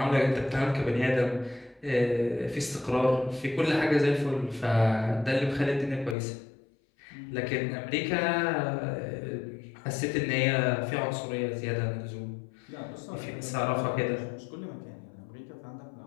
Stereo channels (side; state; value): right; drops out; at 6.2 s